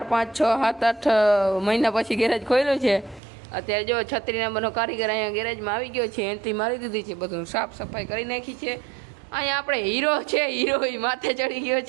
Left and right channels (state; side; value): drops out; left; at 3.2 s